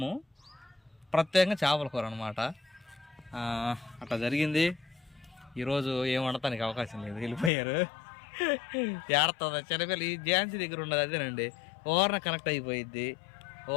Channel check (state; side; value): drops out; right; at 7.5 s